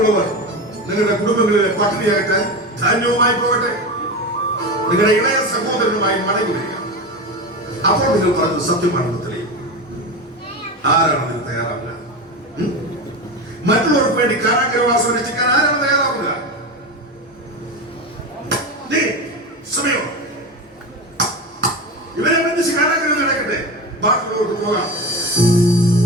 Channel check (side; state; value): both; normal; correlation 0.22